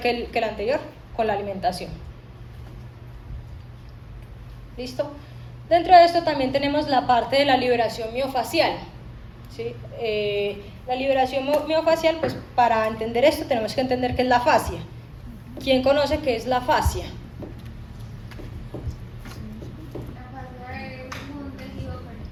que el anterior, con la alimentación. ¿Listo? Dentro de esto también tenemos la parte de la liberación miofacial, ¿sí? La liberación miofacial, pues para entender esto tenemos que entender qué es la fascia. ¿Quién conoce qué es la fascia? La fascia es un tejido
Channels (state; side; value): identical; both; correlation 1.00